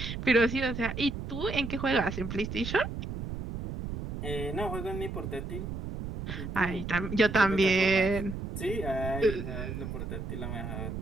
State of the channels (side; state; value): right; noise; rumble, 6 dB below the sound